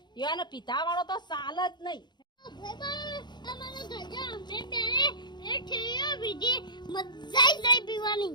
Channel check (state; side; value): late; right; 0.21 ms